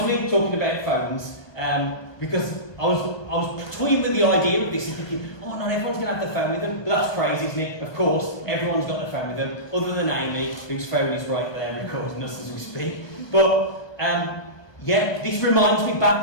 me, talking about phones, because I was toying with the idea of this and thinking, oh, not everyone's going to have their phone with them. But that's crazy, isn't it? Of course, everyone's got their phone with them, other than Amy, whose phone is right there recording us as we speak. But, yeah, this reminds me,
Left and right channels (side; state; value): right; late; 1.2 ms